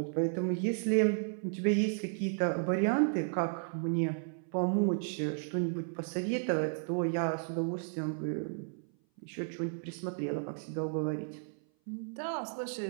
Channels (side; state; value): left; silent; 55 dB below the other